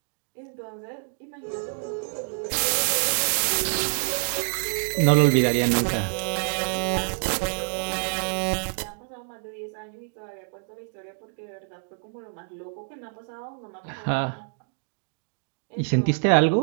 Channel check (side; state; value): left; silent; digital silence